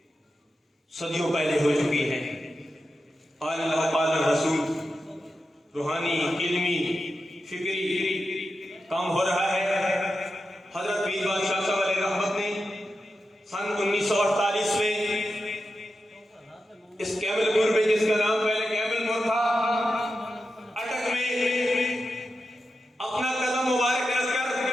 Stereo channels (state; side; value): normal; both; correlation 0.90